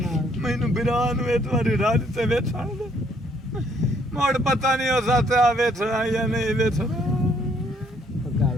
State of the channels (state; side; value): normal; both; correlation 0.67